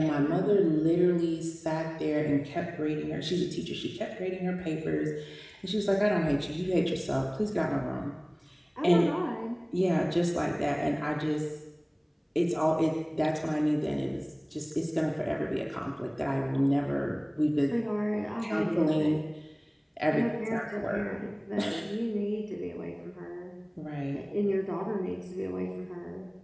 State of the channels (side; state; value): both; identical; correlation 1.00